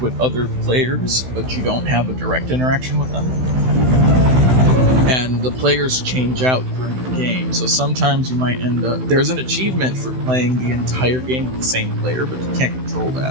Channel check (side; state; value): left; late; 16 ms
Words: with other players, but you don't have a direct interaction with them. And the players change out during the game, so sometimes you might end up... There's an achievement for playing the entire game with the same player, but you can't control